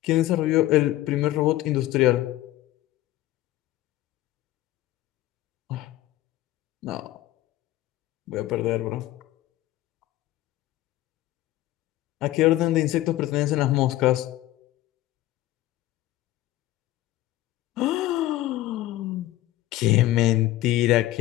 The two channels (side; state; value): right; quieter; 15.5 dB